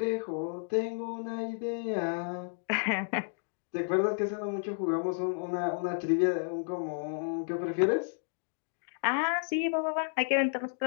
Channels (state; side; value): silent; right; digital silence